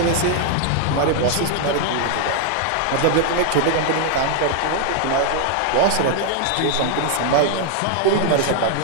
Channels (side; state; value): both; different; correlation 0.00